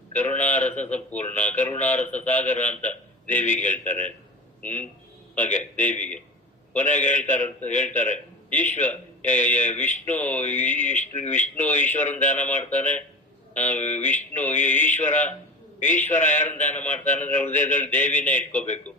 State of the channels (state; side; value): normal; both; correlation 0.31